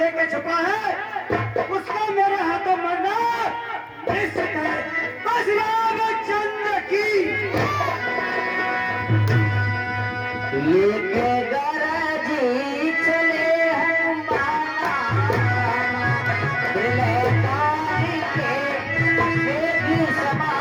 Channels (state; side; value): identical; both; correlation 1.00